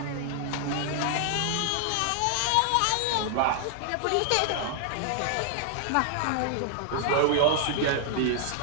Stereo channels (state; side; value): different; both; correlation 0.00